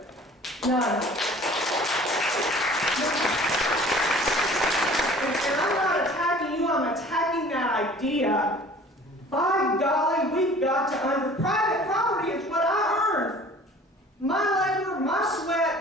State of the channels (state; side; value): normal; both; correlation 0.48